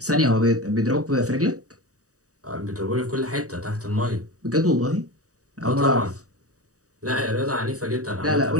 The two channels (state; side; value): late; left; 0.66 ms